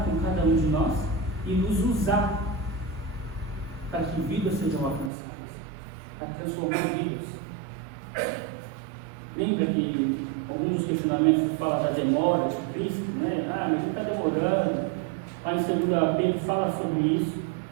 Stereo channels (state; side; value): drops out; left; at 5.1 s